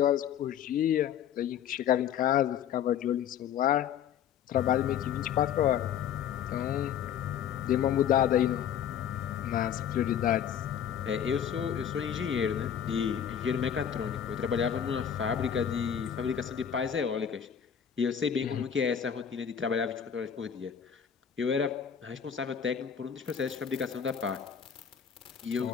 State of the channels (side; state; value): right; quieter; 8.7 dB